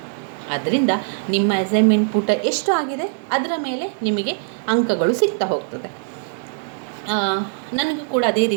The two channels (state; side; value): silent; left; digital silence